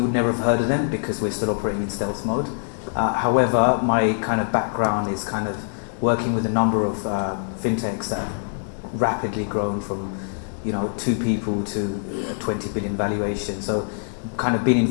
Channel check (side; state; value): right; silent; 63 dB below the other